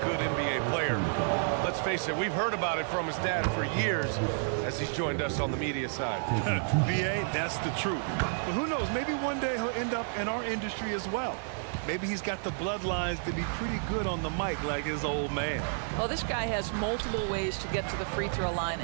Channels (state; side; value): silent; left; digital silence